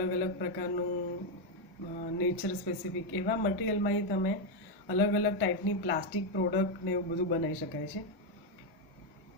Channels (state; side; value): normal; both; correlation 0.04